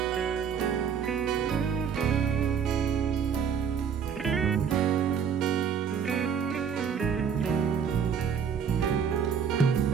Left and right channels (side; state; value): left; quieter; 7.2 dB